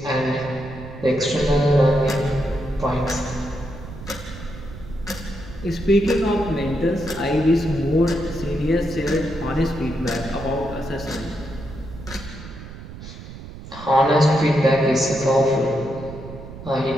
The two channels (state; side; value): noise; right; rumble, 13 dB below the sound